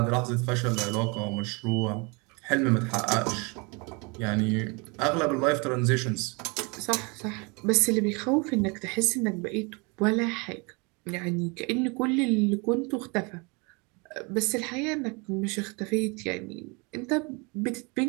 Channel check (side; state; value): left; quieter; 30.1 dB